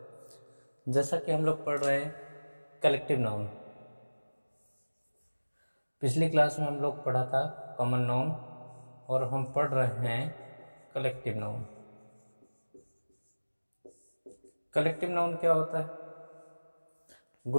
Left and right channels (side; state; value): both; inverted; correlation -1.00